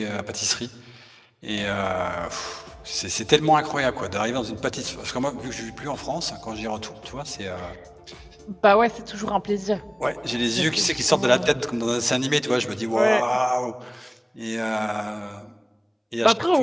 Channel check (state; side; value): identical; both; correlation 1.00